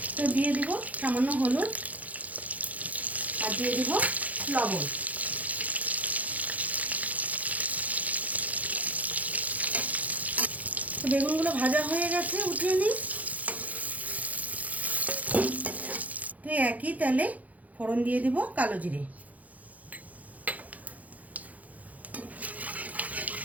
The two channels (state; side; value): late; left; 0.075 ms